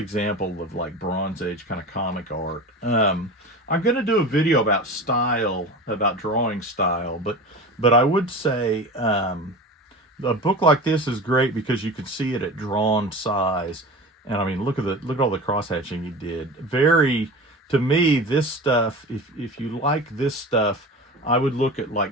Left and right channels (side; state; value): both; normal; correlation 0.32